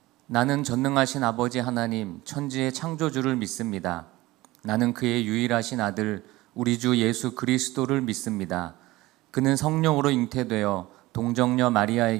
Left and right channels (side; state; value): left; quieter; 19.1 dB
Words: 나는 전능하신 아버지 하나님, 천지의 창조주를 믿습니다. 나는 그의 유일하신 아들, 우리 주 예수 그리스도를 믿습니다. 그는 성령으로 잉태되어 동정녀